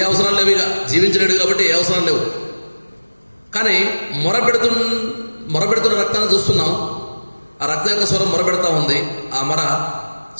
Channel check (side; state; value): both; inverted; correlation -1.00